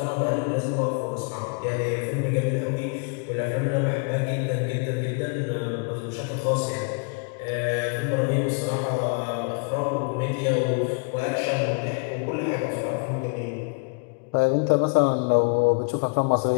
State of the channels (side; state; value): right; quieter; 35.1 dB